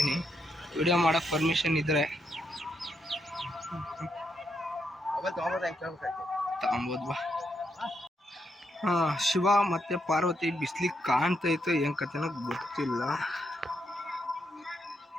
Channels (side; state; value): both; normal; correlation 0.80